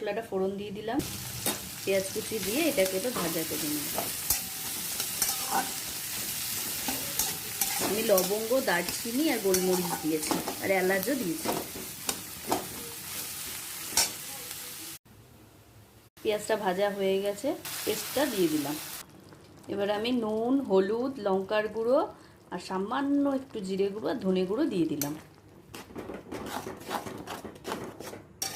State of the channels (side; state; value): both; identical; correlation 1.00